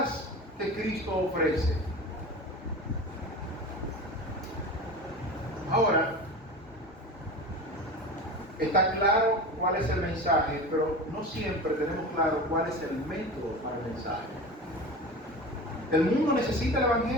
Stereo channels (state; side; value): normal; both; correlation 0.31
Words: que Cristo ofrece. Ahora, está claro cuál es el mensaje, pero no siempre tenemos claro cuál es el método para el mensaje. El mundo necesita el